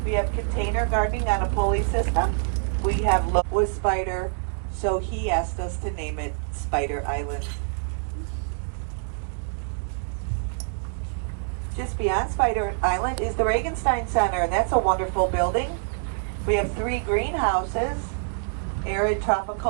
We have container gardening on a pulley system. We have looked with Spider, so he asked us to name it Spider Island. Just beyond Spider Island is the Regenstein Center, and that's a wonderful building. We have 3 greenhouses, arid,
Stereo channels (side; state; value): left; silent; digital silence